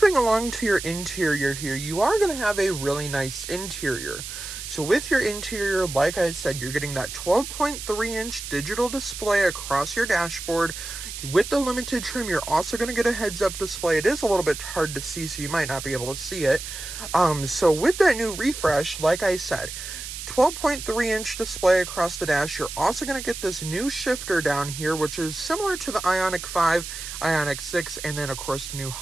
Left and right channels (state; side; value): noise; right; hiss, 9 dB below the sound